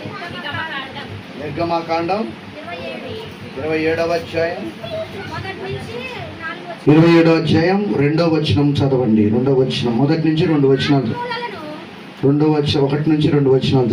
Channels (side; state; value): both; identical; correlation 1.00